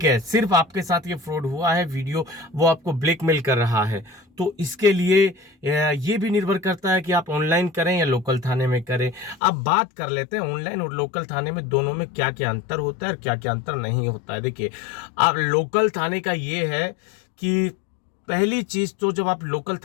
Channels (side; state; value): right; drops out; at 9.3 s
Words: है, सिर्फ आपके साथ ये फ्रॉड हुआ है, वीडियो वो आपको ब्लैकमेल कर रहा है, तो इसके लिए ये भी निर्भर करता है कि आप ऑनलाइन करें या लोकल थाने में करें। अब बात कर लेते हैं ऑनलाइन और लोकल थाने में दोनों में क्या क्या अंतर होता है और क्या क्या अंतर नहीं होता है। देखिए, अब लोकल थाने का ये है कि पहली चीज तो जब आप लोकल